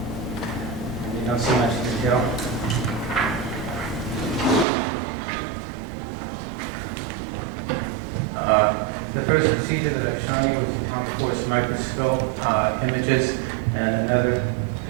You don't see much detail. The first procedure that I've shown you was the atomic force microscope images, and another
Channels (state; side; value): drops out; left; at 4.7 s